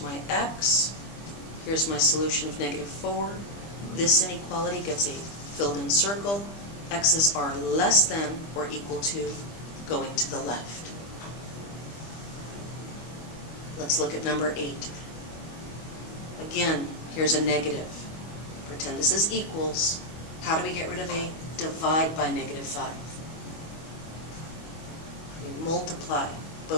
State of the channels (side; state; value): right; late; 25 ms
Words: x. Here's my solution of -4. This inequality gets a filled-in circle. X's are less than or equal to going to the left. Let's look at number 8. Again, here's a negative. Pretend this is equals. How do we get rid of a divide by -5? We multiply